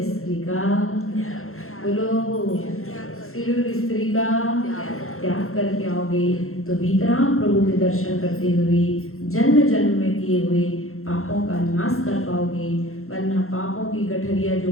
स्त्री का, बोलो श्री और स्त्री का त्याग करके आओगे तो भीतराम प्रभु के दर्शन करते हुए जन्म जन्म में किए हुए पापों का नाश कर पाओगे। वरना पापों की गठरिया जो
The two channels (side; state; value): right; late; 0.62 ms